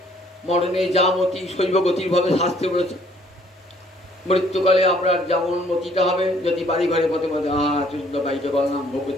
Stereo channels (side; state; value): both; normal; correlation 0.62